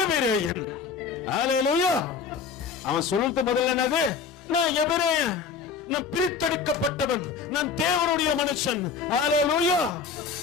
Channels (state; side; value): quieter; right; 5.8 dB